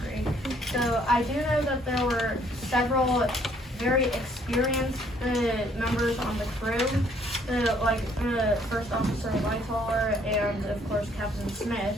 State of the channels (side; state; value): both; normal; correlation 0.64